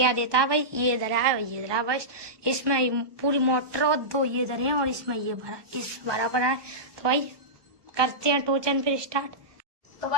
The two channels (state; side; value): late; left; 1.2 ms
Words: देता है। भाई ये इधर है ये इधर है। बस इसमें पूरी मोटर और दो ये इधर है और इसमें ये भरा इस बराबर है। तो भाई करते हैं टोचन फिर स्टार्ट। तो